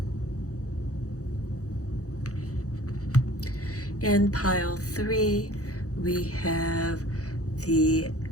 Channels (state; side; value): late; right; 0.66 ms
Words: In pile 3, we have the